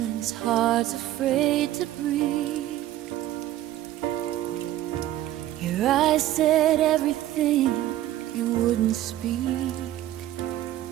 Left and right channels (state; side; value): quieter; left; 13.8 dB